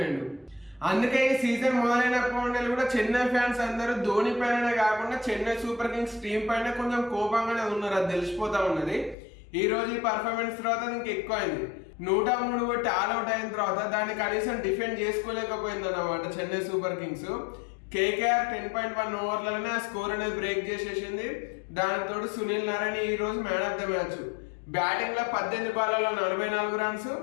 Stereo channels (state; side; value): drops out; right; at 9.2 s